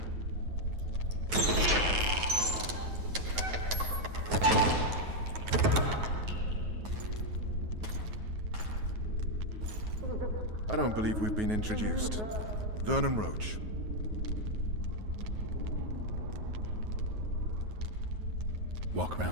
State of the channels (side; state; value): left; late; 9.4 ms